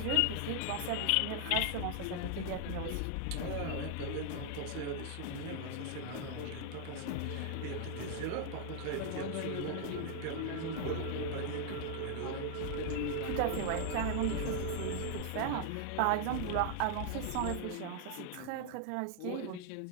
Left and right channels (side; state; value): both; different; correlation 0.00